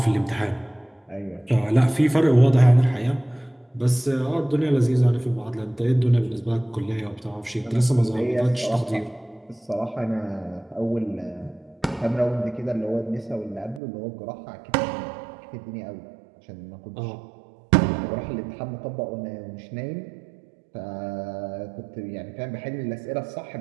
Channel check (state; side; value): drops out; left; at 13.8 s